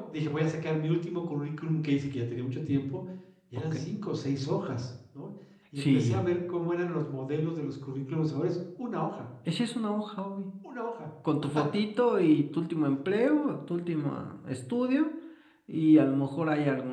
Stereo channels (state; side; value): identical; both; correlation 1.00